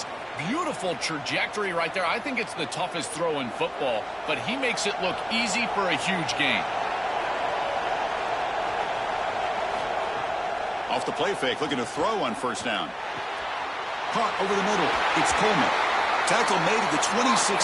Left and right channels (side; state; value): both; identical; correlation 1.00